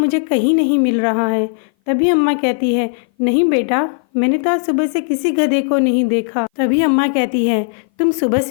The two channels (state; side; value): silent; right; 58 dB below the other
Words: कहीं नहीं मिल रहा है। तभी अम्मा कहती है, नहीं बेटा, मैंने तो आज सुबह से किसी गधे को नहीं देखा। तभी अम्मा कहती है, तुम सुबह